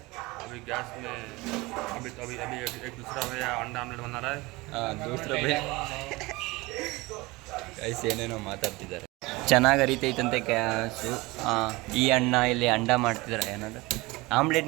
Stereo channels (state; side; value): quieter; left; 22.4 dB